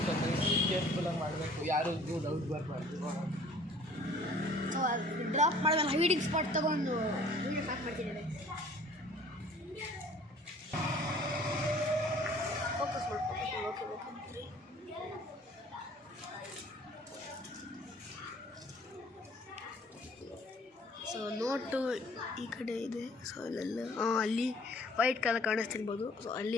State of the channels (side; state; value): both; normal; correlation 0.53